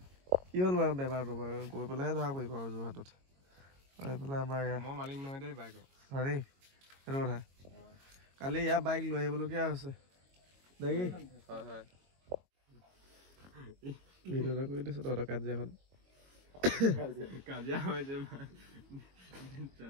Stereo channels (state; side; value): late; left; 22 ms